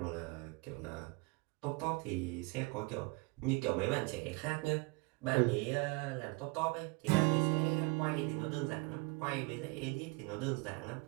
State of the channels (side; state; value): left; quieter; 27.0 dB